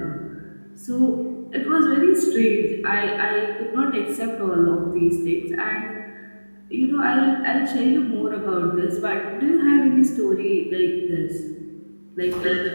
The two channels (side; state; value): both; inverted; correlation -1.00